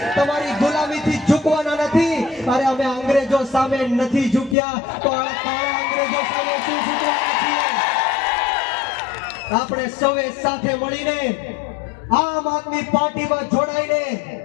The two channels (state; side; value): drops out; right; at 4.5 s